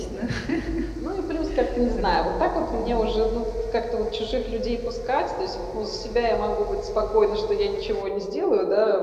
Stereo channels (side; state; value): both; identical; correlation 1.00